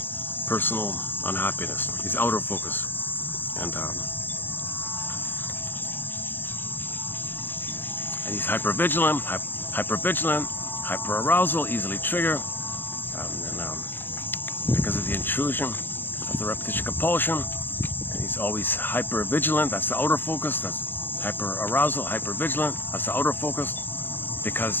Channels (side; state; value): right; late; 0.097 ms